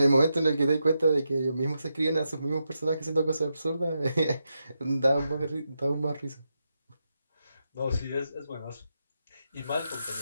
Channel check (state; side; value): inverted; both; correlation -0.86